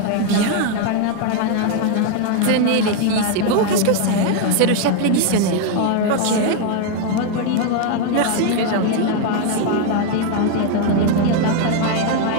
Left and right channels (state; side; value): different; both; correlation 0.01